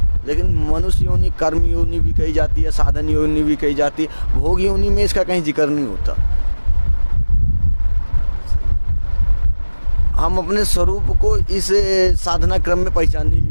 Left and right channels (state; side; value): inverted; both; correlation -1.00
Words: लेकिन मनुष्य योनि कर्म योनि भी कही जाती है, साधन योनि भी कही जाती है। भोग योनि में इसका कहीं जिक्र नहीं होता। हम अपने स्वरूप को इस साधना क्रम में पहचानने